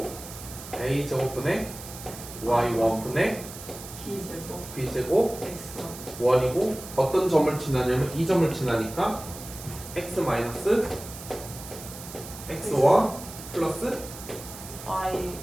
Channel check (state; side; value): noise; right; hiss, 13 dB below the sound